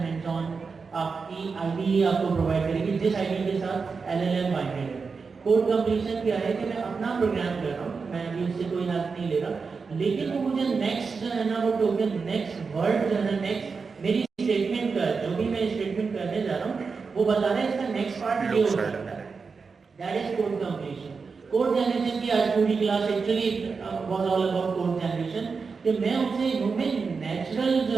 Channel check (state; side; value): quieter; left; 5.0 dB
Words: ऑन आपकी आईडी आपको प्रोवाइड करेगी, जिस आईडी के साथ एलएलएम बाइंडेड है। कोड कंप्लीशन क्या है कि मैं अपना प्रोग्राम कर रहा हूँ, मैं अभी उससे कोई हेल्प नहीं ले रहा, लेकिन वो मुझे नेक्स्ट जो है ना वो टोकन, नेक्स्ट वर्ड जो है ना, नेक्स्ट मेरी स्टेटमेंट का जो भी मैं स्टेटमेंट करने जा रहा हूँ वो बता रहा है इसका नेक्स्ट पार्ट ये हो सकता है। That is code completion. Code generation की आज पूरी class actually was all about code generation, कि मैं उसे ह्यूमन नेचुरल